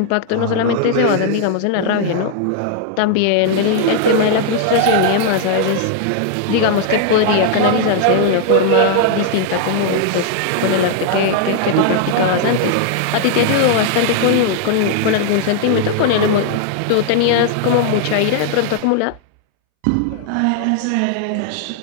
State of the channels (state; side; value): different; both; correlation 0.00